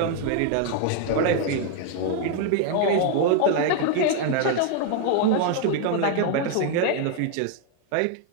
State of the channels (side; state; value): both; different; correlation 0.00